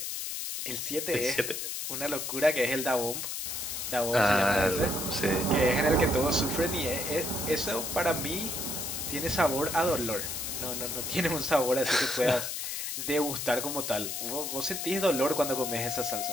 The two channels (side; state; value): left; noise; hiss, 4 dB below the sound